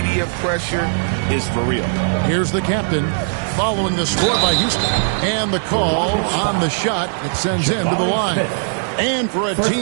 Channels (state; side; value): silent; left; 67 dB below the other